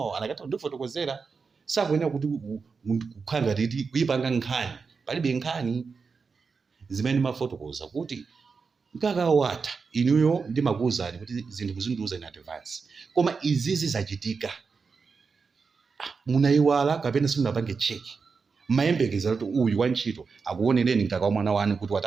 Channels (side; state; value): left; quieter; 5.1 dB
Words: anakata ndifotokozera sakuyenera kuti kukhanga titi kuyipanga nkhani palibe nkhani zimene mafotokoza kuti mkaka watha inuyo ndimakuwuzani kuti zinthu muzindiuza in advance koma izizi zachitika munayiwala kapena simunapange cheki mayembekeza kuti uyu wantchito akuonereni mkaka wa mwana wanu kuti